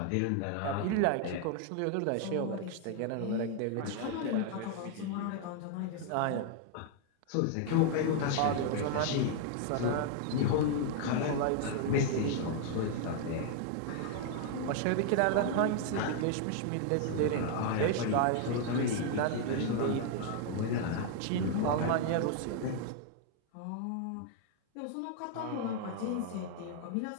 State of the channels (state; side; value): different; both; correlation 0.00